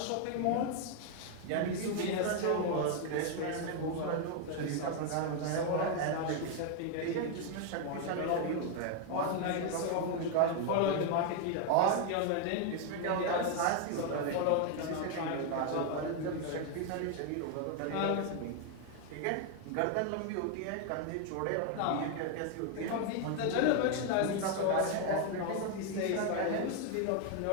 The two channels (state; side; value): different; both; correlation 0.01